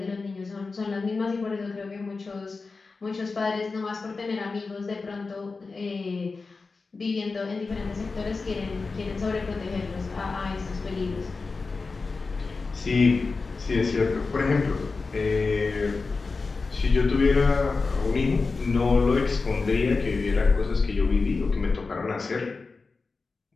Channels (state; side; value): quieter; right; 4.1 dB